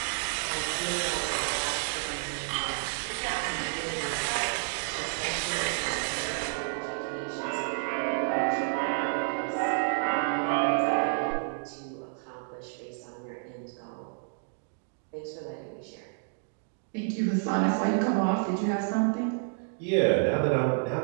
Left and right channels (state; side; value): silent; left; 58 dB below the other